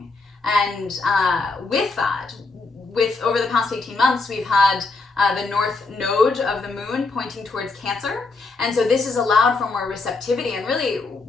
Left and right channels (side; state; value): right; quieter; 3.8 dB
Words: And with that, over the past 18 months, we've had the north node of the moon pointing towards Cancer. And so this has allowed for more receptivity, and really